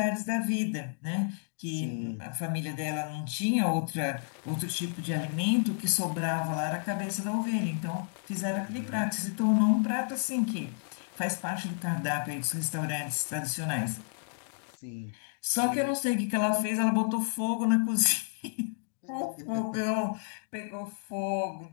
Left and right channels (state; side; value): silent; right; digital silence